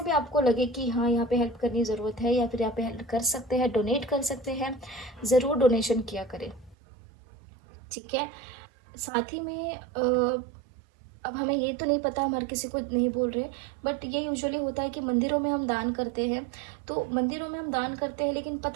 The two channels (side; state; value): left; drops out; at 6.8 s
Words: भी आपको लगे कि हाँ यहाँ पे हेल्प करनी ज़रूरत है, या फिर यहाँ पे हेल्प कर सकते हैं, डोनेट कर सकते हैं, ज़रूर डोनेशन किया करें, ठीक है। साथ ही में अब हमें ये तो नहीं पता, हम हर किसी को नहीं बोल रहे, बट ये यूजुअली होता है कि मंदिरों में हम दान करते हैं, तो मंदिरों में हम दान करते हैं लेकिन